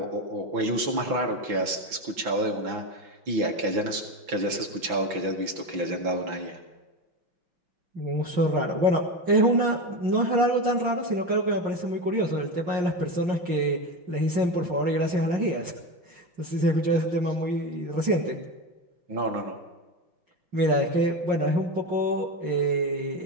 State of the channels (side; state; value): left; late; 5.9 ms